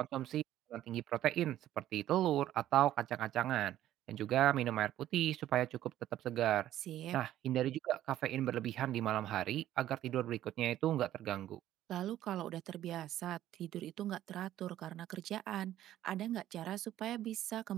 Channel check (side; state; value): left; quieter; 12.8 dB